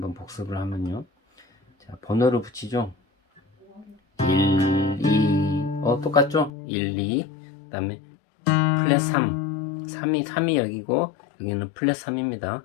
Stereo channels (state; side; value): drops out; right; at 6.5 s